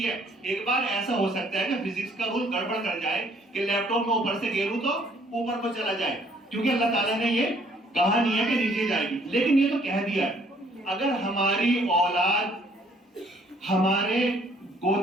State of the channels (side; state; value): both; normal; correlation 0.62